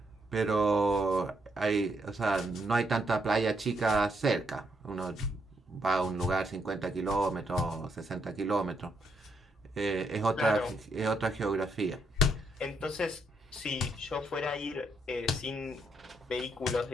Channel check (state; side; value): normal; both; correlation 0.76